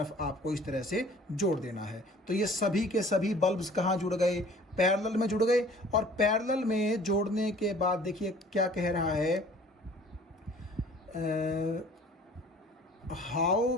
आपको इस तरह से जोड़ देना है। तो ये सभी के सभी बल्ब्स कहाँ जुड़ गए, पैरेलल में जुड़ गए। और पैरेलल में जोड़ने के बाद देखिए क्या कह रहा है, how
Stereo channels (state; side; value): normal; both; correlation 0.51